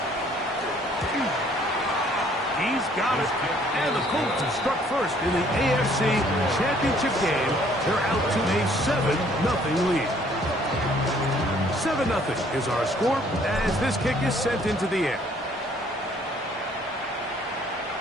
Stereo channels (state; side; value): normal; both; correlation 0.61